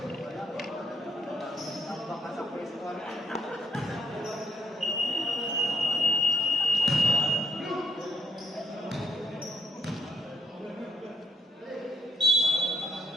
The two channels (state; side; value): normal; both; correlation 0.74